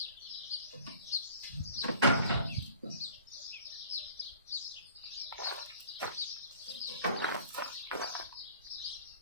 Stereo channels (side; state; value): both; inverted; correlation -0.47